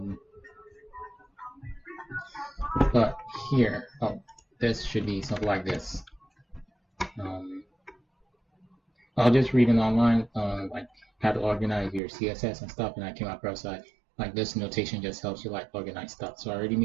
But here, oh, this should be something like this. I'll just read it online, like how to organize your CSS and stuff, and I came across like this notation just helps you like organize stuff. So I already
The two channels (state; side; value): drops out; left; at 12.0 s